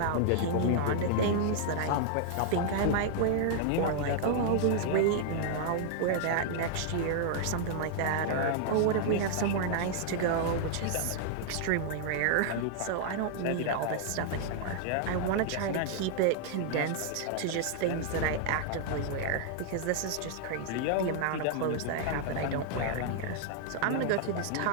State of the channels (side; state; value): both; different; correlation -0.01